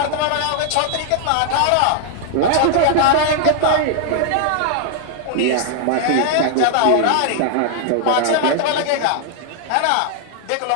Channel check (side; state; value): both; different; correlation 0.00